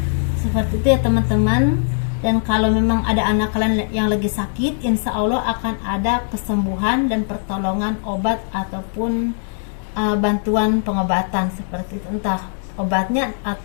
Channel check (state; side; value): silent; right; digital silence